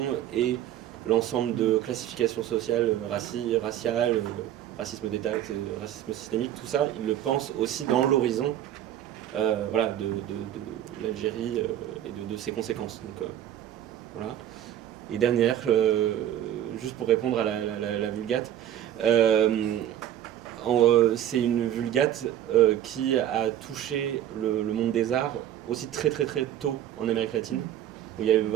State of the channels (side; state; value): left; quieter; 11.5 dB